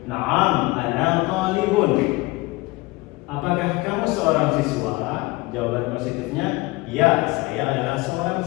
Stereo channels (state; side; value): quieter; right; 22.7 dB